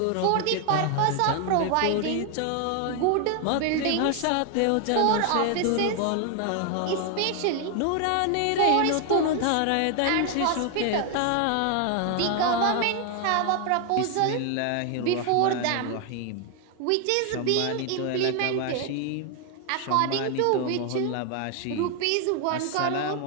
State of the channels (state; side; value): different; both; correlation 0.01